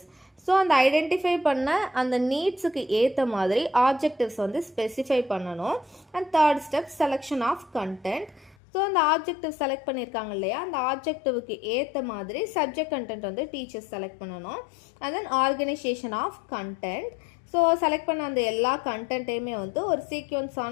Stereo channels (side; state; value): right; drops out; at 8.6 s